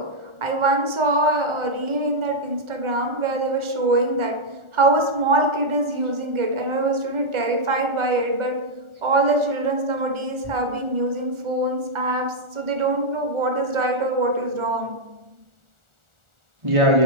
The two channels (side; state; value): left; late; 1.4 ms